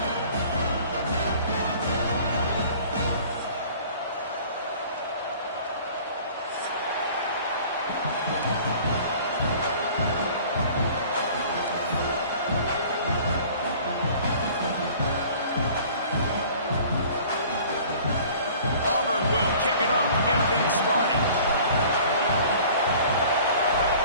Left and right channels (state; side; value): inverted; both; correlation -0.48